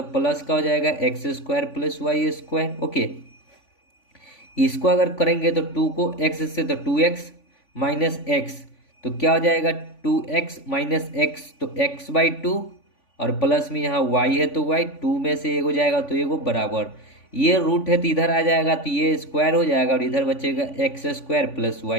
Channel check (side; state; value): right; late; 3.5 ms